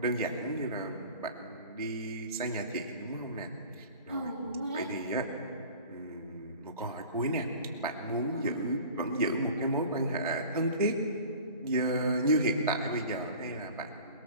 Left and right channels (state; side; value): inverted; both; correlation -0.42